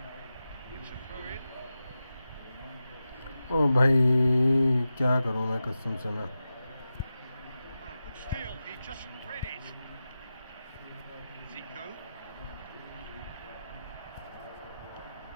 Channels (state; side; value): inverted; both; correlation -0.92